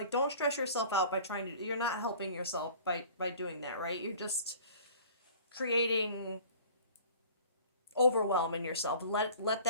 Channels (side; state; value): both; inverted; correlation -0.46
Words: don't stress yourself out by you're not helping yourself by doing that, right? You're just creating overwhelm in yourself. Let